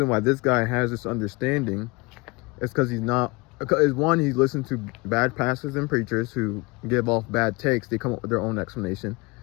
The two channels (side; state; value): right; quieter; 26.0 dB